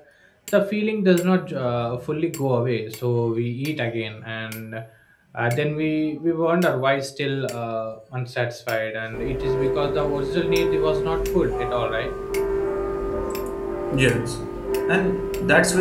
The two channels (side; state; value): both; identical; correlation 1.00